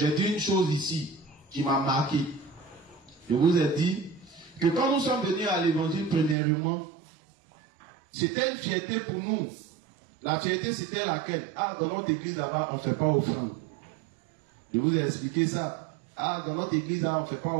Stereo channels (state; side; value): drops out; left; at 6.4 s